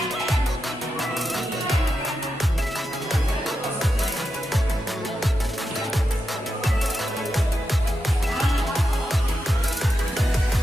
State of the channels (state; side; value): normal; both; correlation 0.87